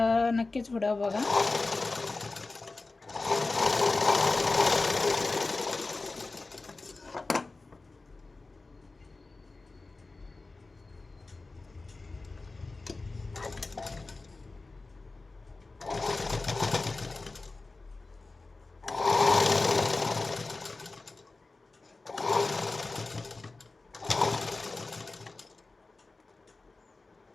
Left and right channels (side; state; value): right; quieter; 3.5 dB